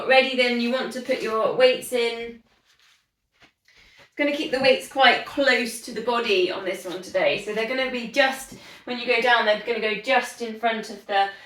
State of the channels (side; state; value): both; identical; correlation 1.00